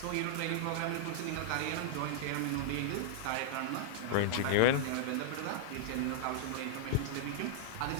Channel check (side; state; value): both; different; correlation -0.01